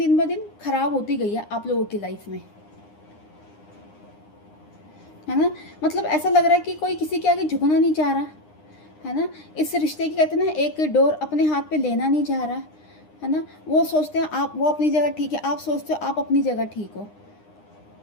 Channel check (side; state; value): right; late; 9.8 ms